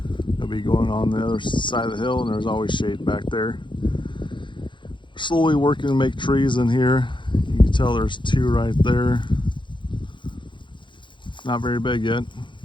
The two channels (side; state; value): right; late; 0.23 ms